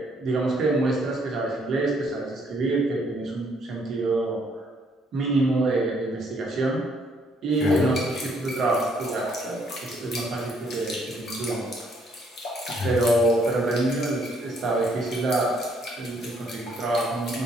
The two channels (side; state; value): both; normal; correlation 0.68